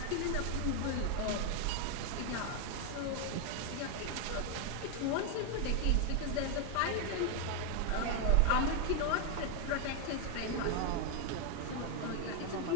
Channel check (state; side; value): different; both; correlation 0.00